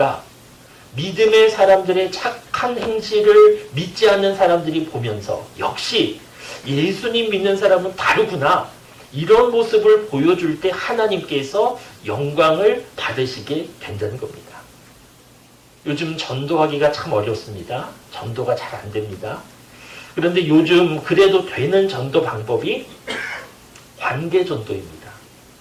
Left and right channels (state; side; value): identical; both; correlation 1.00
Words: 믿음의 사람들의 착한 행실을 믿지 않는 사람들이 보면서 역시 예수님 믿는 사람은 다르구나. 이런 모습을 보여줄 때 하나님께서 영광을 받으시게 된다는 겁니다. 요즘 전도하기가 참 어렵습니다. 전도가 잘 안 됩니다. 그런데 요즘 그래도 되는 전도 방법이 관계전도입니다.